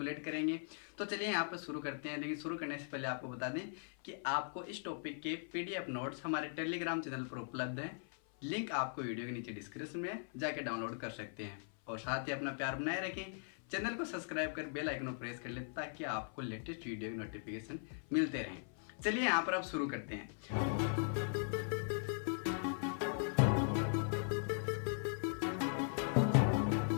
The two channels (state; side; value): silent; right; 51 dB below the other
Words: करेंगे। तो चलिए यहाँ पर शुरू करते हैं। लेकिन शुरू करने से पहले आपको बता दें कि आपको इस टॉपिक के पीडीएफ नोट्स हमारे टेलीग्राम चैनल पर उपलब्ध हैं। लिंक आपको वीडियो के नीचे डिस्क्रिप्शन में जाके डाउनलोड कर सकते हैं। और साथ ही अपना प्यार बनाए रखें, चैनल को सब्सक्राइब कर बेल आइकन को प्रेस कर लें ताकि आपको लेटेस्ट वीडियो की नोटिफिकेशन मिलते रहें। चलिए यहाँ पर अब शुरू करते हैं।